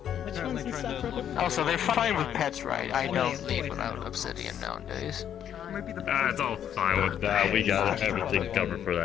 Also, they're fine with pets, right? I don't leave without obsidian nowadays. It's all fine with that. We got everything covered for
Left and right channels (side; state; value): right; quieter; 9.6 dB